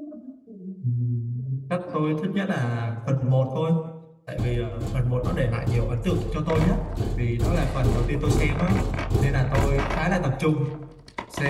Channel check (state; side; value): identical; both; correlation 1.00